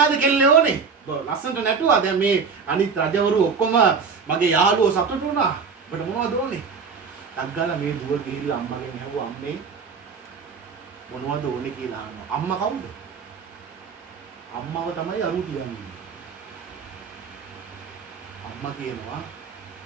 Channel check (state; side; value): quieter; left; 5.5 dB